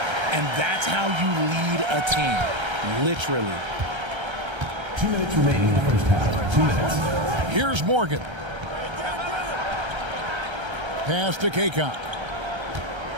And that's how you lead a team. Literally. 2 minutes remaining in the first half. 2 minutes. Here's Morgan. Pass to Kaycock.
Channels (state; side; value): late; left; 1.3 ms